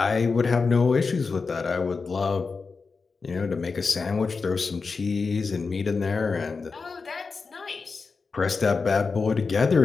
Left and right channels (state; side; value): quieter; right; 4.6 dB